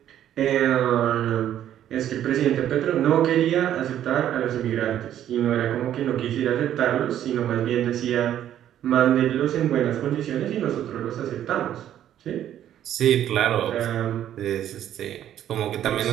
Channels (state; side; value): quieter; left; 11.1 dB